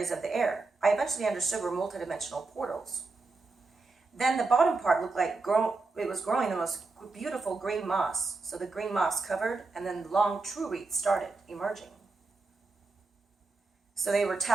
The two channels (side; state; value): left; quieter; 3.8 dB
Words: of the air. I eventually understood were multidimensional portals. Then the bottom part looked like it was growing the most beautiful green moss. So the green moss covered, and then the long true roots started emerging. So they were